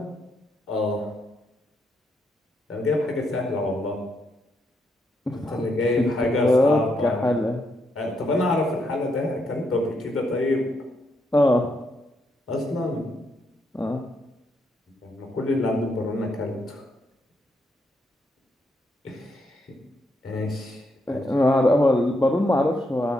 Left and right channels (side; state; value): both; normal; correlation 0.78